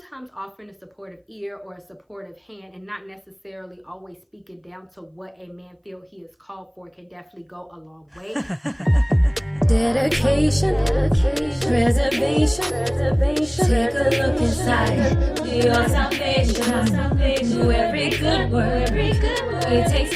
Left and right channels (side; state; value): both; identical; correlation 1.00